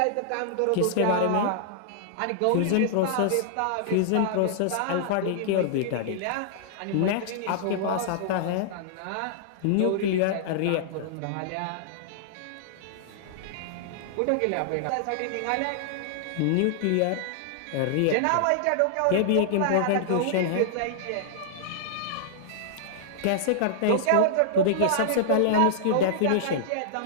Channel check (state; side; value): different; both; correlation -0.01